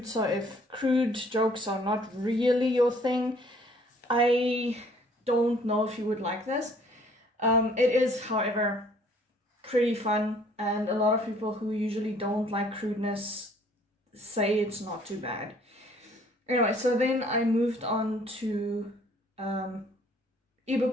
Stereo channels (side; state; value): both; normal; correlation 0.59